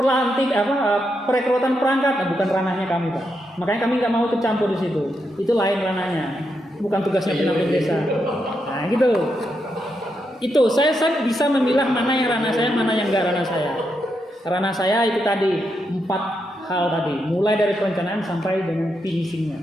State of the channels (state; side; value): normal; both; correlation 0.82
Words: perekrutan perangkat, bukan ranahnya kami, Pak. Makanya kami nggak mau ikut campur di situ. Itu lain ranahnya, bukan tugasnya pendamping desa. Nah gitu. Itu saya bisa memilah mana yang ranah saya, mana yang enggak ranah saya. Ranah saya itu tadi 4 hal tadi, mulai dari perencanaan sampai dengan finishingnya,